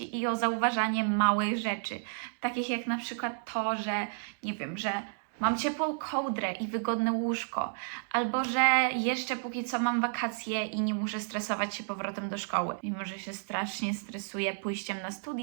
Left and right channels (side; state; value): left; silent; digital silence